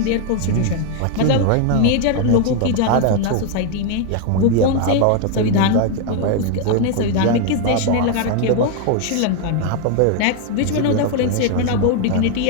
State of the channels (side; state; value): both; different; correlation 0.01